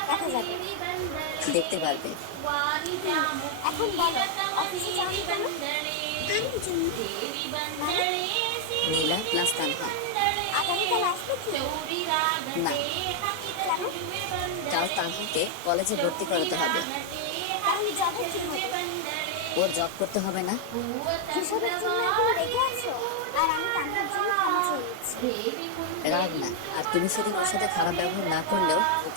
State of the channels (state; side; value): different; both; correlation 0.00